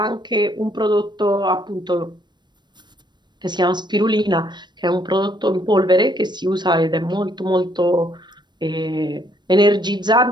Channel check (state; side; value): late; left; 0.22 ms